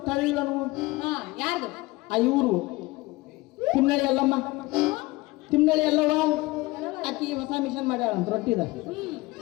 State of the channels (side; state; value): right; quieter; 21.0 dB